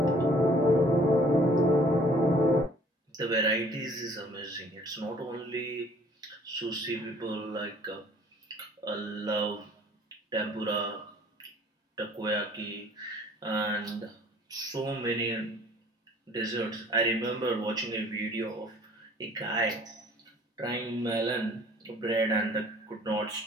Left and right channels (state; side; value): normal; both; correlation 0.55